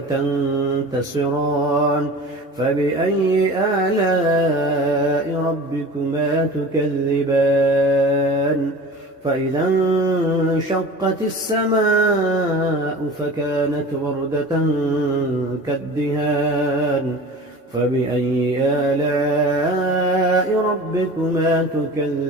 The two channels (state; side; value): normal; both; correlation 0.37